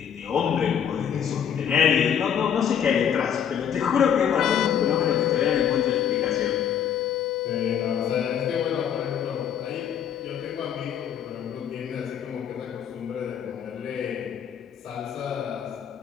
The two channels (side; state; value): right; quieter; 8.6 dB